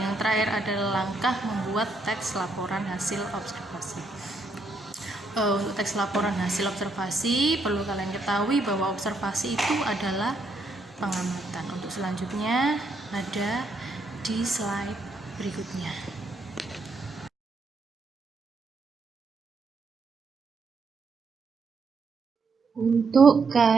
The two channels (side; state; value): left; quieter; 3.1 dB